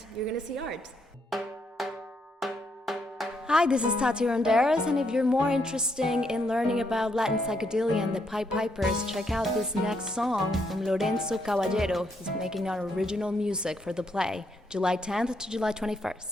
you're gonna see art. Hi, this is Tati Ronderas, and if you're more interested in learning about Latin psychedelia and the Piedpipers, check out this next song from Lorenzo Caballero. He's making our original music for the play, July 10th to July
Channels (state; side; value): normal; both; correlation 0.76